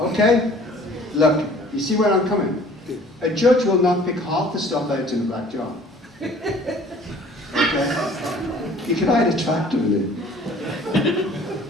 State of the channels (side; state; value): both; normal; correlation 0.52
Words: Look, you see where I'm coming? A judge will not pick half the stuff out in the black jar. Okay? You can hide a tractor in it.